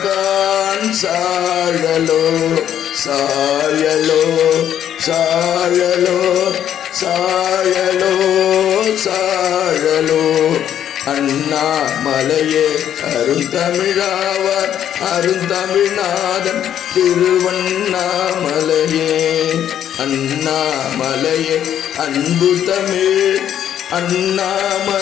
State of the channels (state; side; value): quieter; right; 10.1 dB